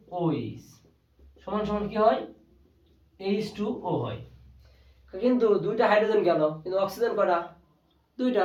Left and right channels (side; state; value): both; identical; correlation 1.00